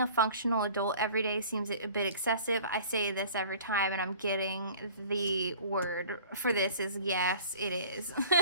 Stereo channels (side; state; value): both; inverted; correlation -0.46